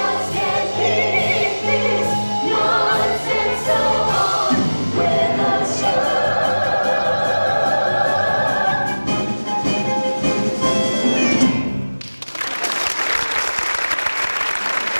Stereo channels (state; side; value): inverted; both; correlation -1.00